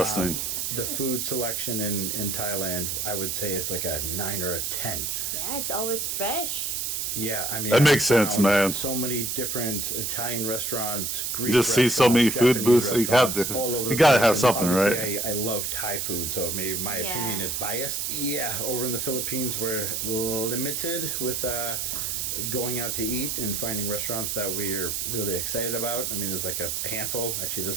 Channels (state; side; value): noise; right; hiss, 1 dB below the sound